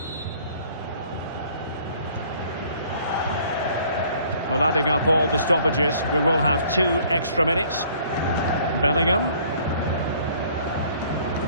Well, adding up all the stoppages, we will have 2 extra minutes. Bellingham.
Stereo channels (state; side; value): inverted; both; correlation -0.57